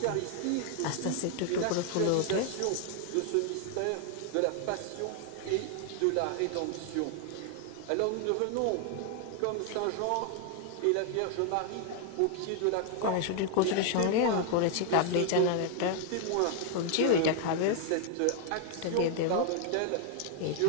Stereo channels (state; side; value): different; both; correlation 0.00